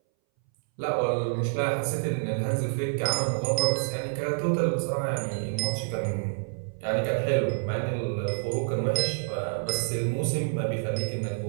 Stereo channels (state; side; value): silent; left; 59 dB below the other